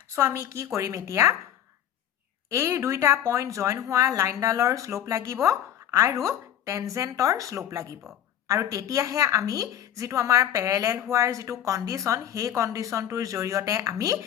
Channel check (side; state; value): right; quieter; 10.7 dB